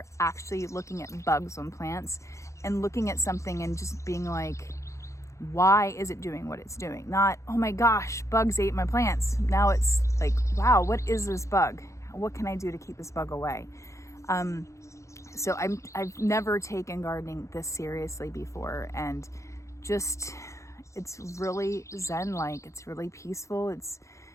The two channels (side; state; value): right; late; 0.15 ms